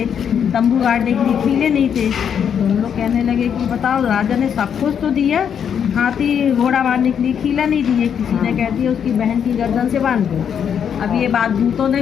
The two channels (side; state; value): right; quieter; 8.0 dB